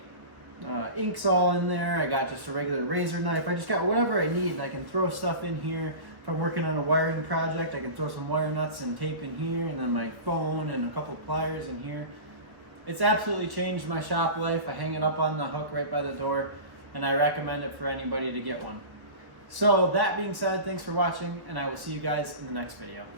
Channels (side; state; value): left; late; 1.4 ms